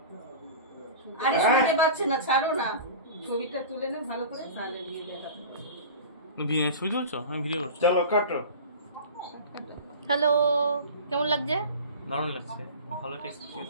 আরে শুনতে পাচ্ছে না, ছাড়ো না। ছবিটা তুলে না ভালো করে, তাহলে নিয়ে দেখা। ছবি তুলছো? আমি ভিডিও করছি। চলো কাটো। হ্যালো, কেমন লাগছে? দারুণ লাগছে, ভালো টেস্ট।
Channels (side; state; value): both; inverted; correlation -0.35